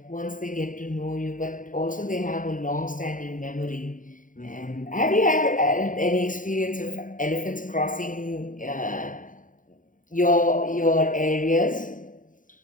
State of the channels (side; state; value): right; late; 0.39 ms